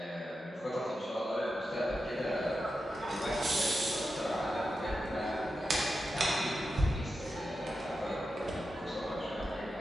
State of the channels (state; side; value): normal; both; correlation 0.90